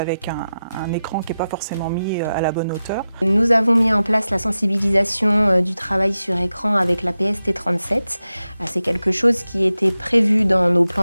un écran qui n'est pas forcément mis à la bonne hauteur. Nous avons mis en place la sensibilisation du travail sur écran avec la PST 37. C'est quelque chose qui était prévu dans nos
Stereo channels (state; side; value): inverted; both; correlation -0.92